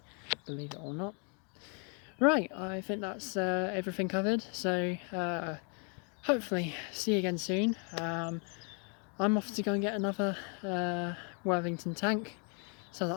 believe it or not. Right, I think that's everything covered, so hopefully see you again soon. I'm off to go and get another Worthington tank so that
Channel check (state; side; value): quieter; right; 37.9 dB